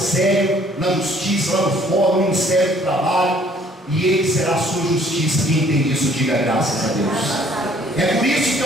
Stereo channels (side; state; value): both; normal; correlation 0.59